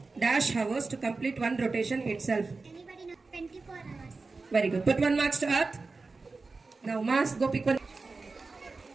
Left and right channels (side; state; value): left; quieter; 3.9 dB